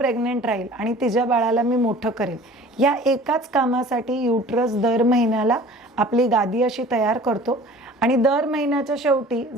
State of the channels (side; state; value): both; normal; correlation 0.45